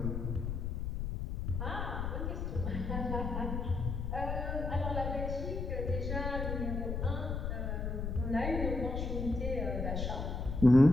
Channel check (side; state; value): left; noise; rumble, 2 dB below the sound